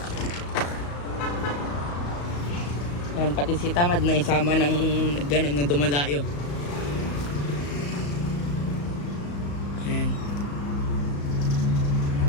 Ayan, pati si Tamad na isama ng gano'n na dumadayo. Ayan.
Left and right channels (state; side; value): late; right; 35 ms